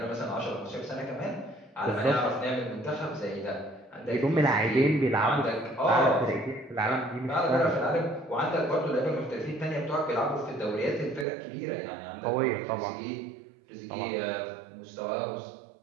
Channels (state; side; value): drops out; left; at 11.2 s